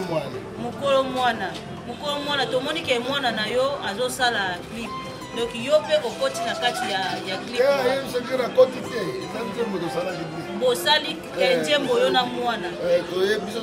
Mokolo mwana. Mokolo mwana tomoni ke mwana na yo azosala clip. Donc yo pe okoti na kati ya clip. Bosali kenjembo yo na mwana. Toye biso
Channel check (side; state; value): both; identical; correlation 1.00